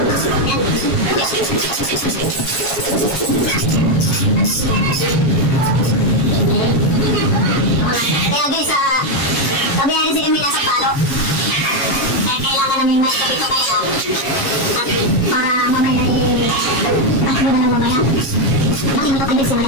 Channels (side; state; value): right; late; 7.3 ms